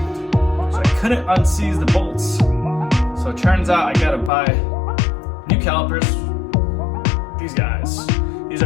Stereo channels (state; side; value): drops out; right; at 4.3 s